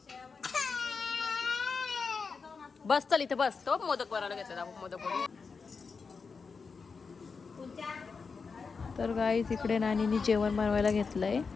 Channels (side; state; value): right; quieter; 5.0 dB